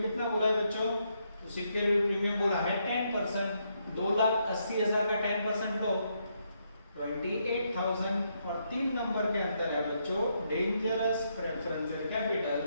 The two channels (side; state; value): both; inverted; correlation -0.77